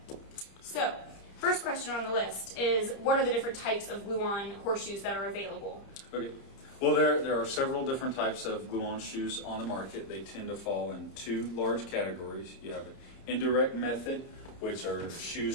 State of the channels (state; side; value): late; right; 29 ms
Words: So, first question on the list is, what are the different types of glue-on horseshoes that are available? Okay. Well, there are several different types of glue-on shoes on the market. They tend to fall in two large categories. You have an indirect method, which are